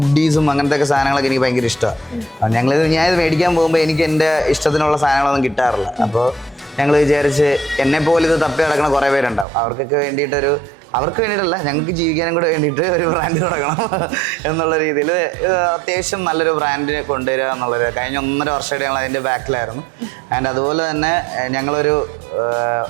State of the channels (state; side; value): drops out; left; at 9.5 s